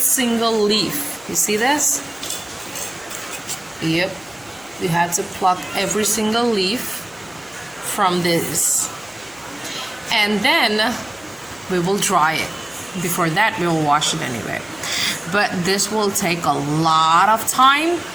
leaf. You see this? Yep. We have to pluck every single leaf from this. And then we will dry it. Before that, we will wash it anyway. But this will take a lot of time.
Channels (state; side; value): noise; left; hum, 27 dB below the sound